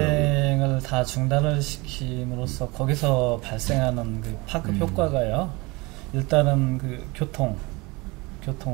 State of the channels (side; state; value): left; quieter; 24.9 dB